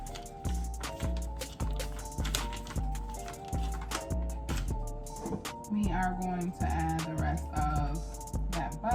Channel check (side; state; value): both; identical; correlation 1.00